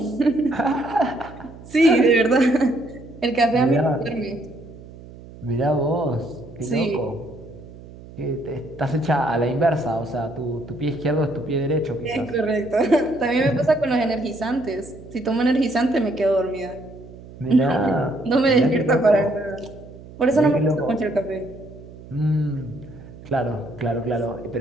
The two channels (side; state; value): right; noise; hum, 18 dB below the sound